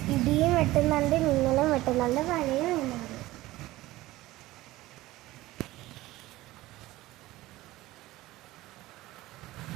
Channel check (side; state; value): left; quieter; 17.6 dB